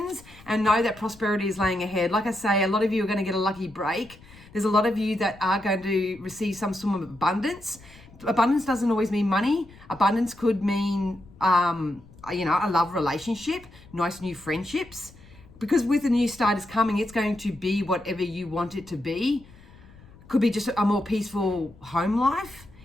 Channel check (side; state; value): left; noise; rumble, 23 dB below the sound